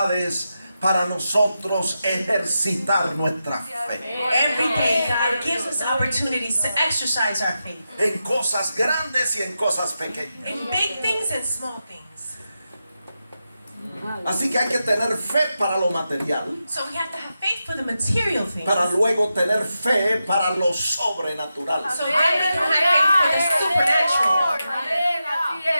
para nosotros ejercitar nuestra fe. Every day, God gives us opportunities to exercise our faith En cosas grandes y en cosas pequeñas. in big things and small things. Así que hay que tener fe para lo material, So we have to have faith for the material things. para luego tener fe para lo sobrenatural. So then we can have faith for the supernatural. Amén, así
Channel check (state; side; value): inverted; both; correlation -0.89